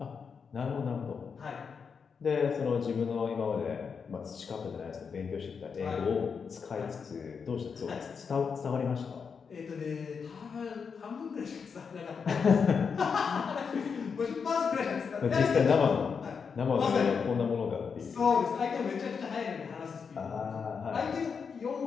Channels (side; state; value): right; quieter; 6.0 dB